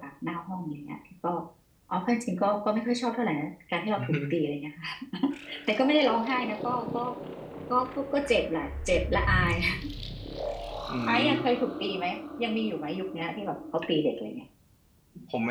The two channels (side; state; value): both; identical; correlation 1.00